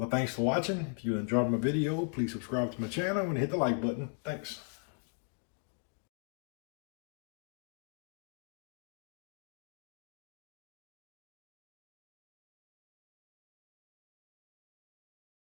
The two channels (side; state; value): right; silent; 52 dB below the other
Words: thanks for watching. If you enjoyed my video, please subscribe to my channel and hit the like button. Thanks.